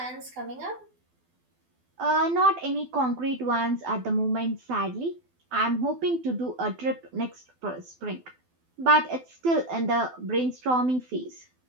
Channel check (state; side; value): late; left; 12 ms